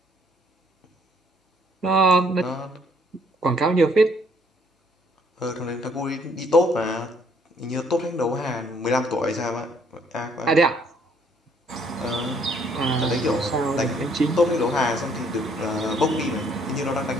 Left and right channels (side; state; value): both; normal; correlation 0.64